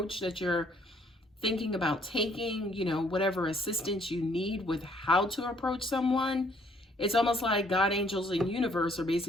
that you're thinking about taking, you know, whatever assistance you need with how to approach someone, it's almost like God, angels, and universe are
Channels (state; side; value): normal; both; correlation 0.64